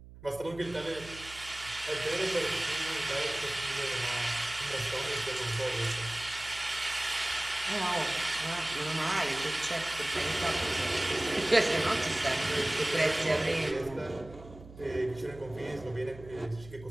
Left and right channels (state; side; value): noise; right; hum, 18 dB below the sound